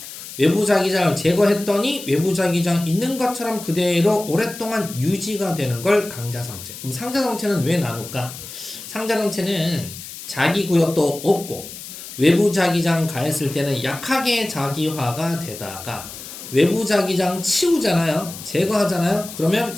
외부 자기장을 제거했더니 외부 자기장 있는 것처럼 그대로 오랫동안 유지가 되는 걸 강자성체. 그럼 상자성체는 왜 나눌까? 상자성체는 자기 구역도 없고 외부 자기장 가했을 때는 약하게 자기화가 되다가 외부 자기장 치우잖아요. 제거하잖아요. 그러면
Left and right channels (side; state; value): left; noise; hiss, 12 dB below the sound